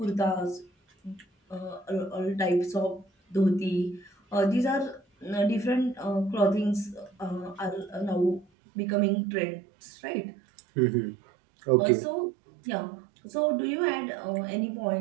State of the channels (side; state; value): left; drops out; at 8.5 s